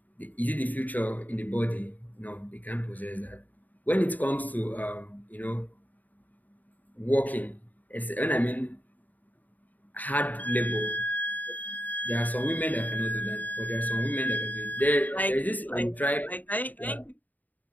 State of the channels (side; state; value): right; late; 0.081 ms